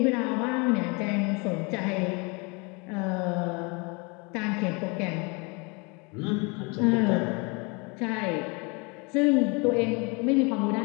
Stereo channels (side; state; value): right; quieter; 29.9 dB